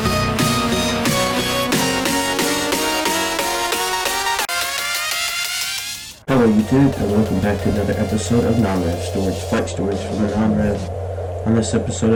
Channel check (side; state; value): both; identical; correlation 1.00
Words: Hello YouTube, and welcome back to another episode of Non-Rev Stories, flight stories from the Non-Rev. On this episode